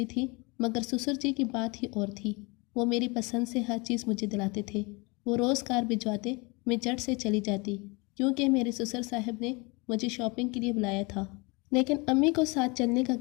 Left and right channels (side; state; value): right; quieter; 27.7 dB